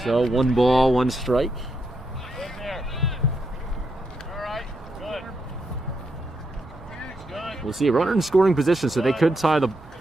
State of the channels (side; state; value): both; normal; correlation 0.81